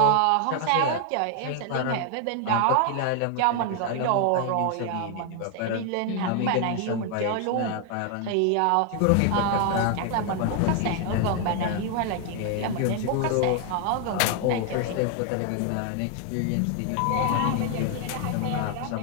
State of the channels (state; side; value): different; both; correlation 0.00